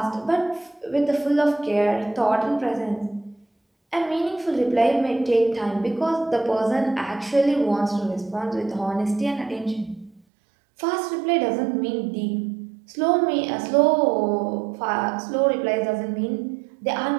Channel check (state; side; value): drops out; left; at 10.2 s